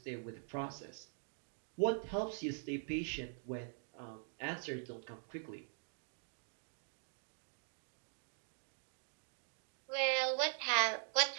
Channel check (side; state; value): left; silent; digital silence